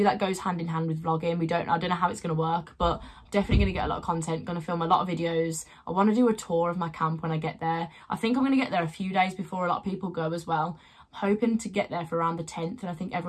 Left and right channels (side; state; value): both; identical; correlation 1.00